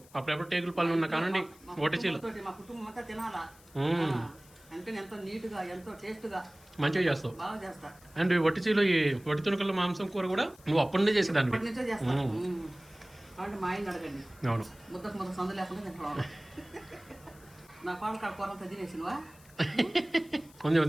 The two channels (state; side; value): noise; left; hiss, 25 dB below the sound